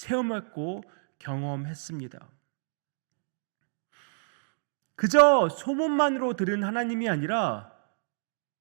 경험했습니다. 그저 소문만으로 들은 하나님이 아니라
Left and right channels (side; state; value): left; silent; digital silence